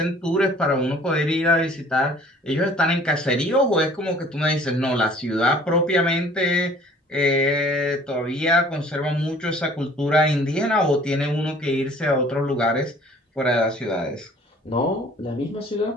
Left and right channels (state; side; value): normal; both; correlation 0.52